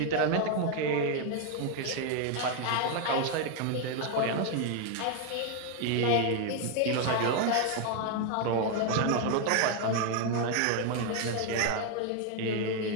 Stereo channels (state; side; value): different; both; correlation 0.01